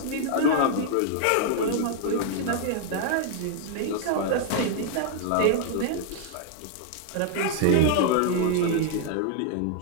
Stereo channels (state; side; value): different; both; correlation 0.00